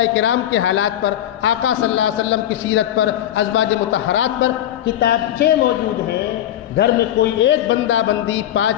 کرام کے حالات پر، آقا صلی اللہ علیہ وسلم کی سیرت پر، ازواج مطہرات پر کتابچے موجود ہیں. گھر میں کوئی ایک بندہ بندی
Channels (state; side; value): quieter; right; 11.9 dB